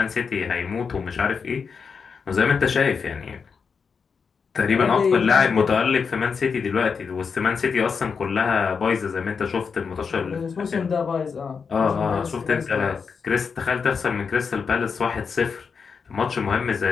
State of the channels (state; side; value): quieter; right; 5.7 dB